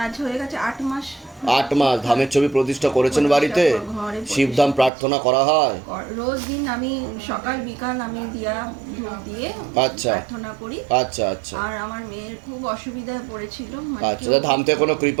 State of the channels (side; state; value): left; drops out; at 4.9 s